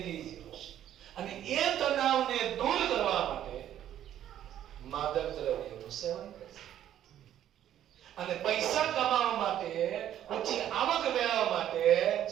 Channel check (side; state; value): left; quieter; 11.2 dB